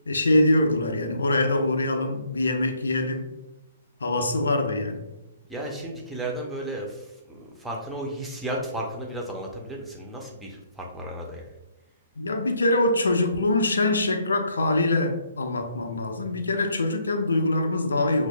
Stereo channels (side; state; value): both; inverted; correlation -0.69